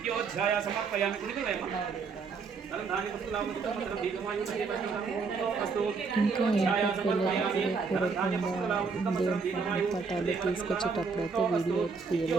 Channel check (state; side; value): quieter; left; 4.9 dB